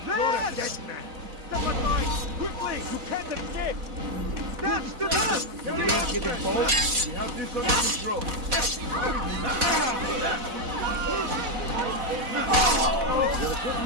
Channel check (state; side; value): late; left; 4.1 ms